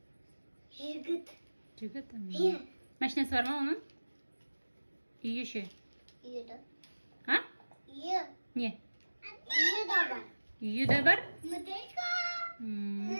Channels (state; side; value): inverted; both; correlation -1.00